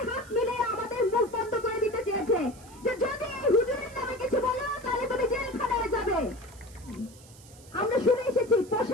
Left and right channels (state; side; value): noise; right; hiss, 22 dB below the sound